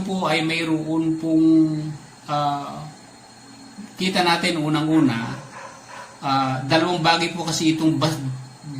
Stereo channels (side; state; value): both; identical; correlation 1.00